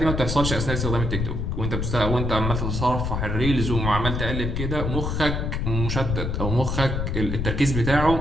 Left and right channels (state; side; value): noise; left; rumble, 1 dB below the sound